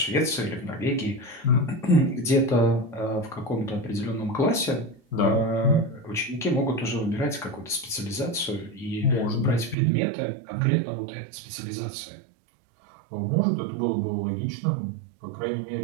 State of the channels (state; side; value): drops out; left; at 9.8 s